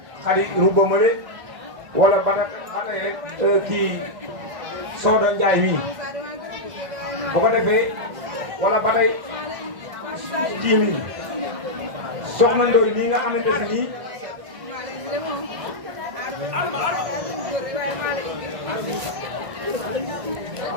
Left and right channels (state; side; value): late; left; 1.6 ms